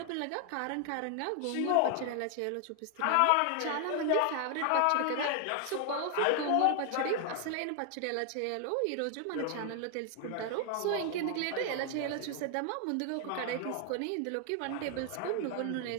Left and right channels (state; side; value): different; both; correlation 0.00